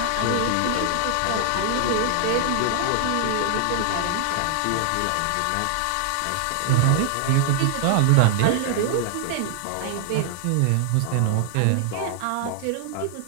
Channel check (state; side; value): different; both; correlation 0.00